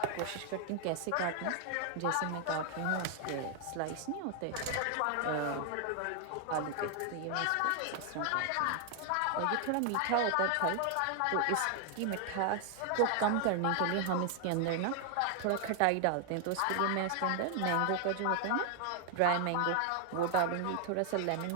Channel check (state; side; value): different; both; correlation 0.00